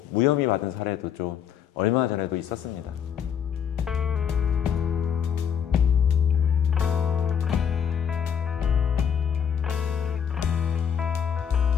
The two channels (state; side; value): quieter; right; 8.0 dB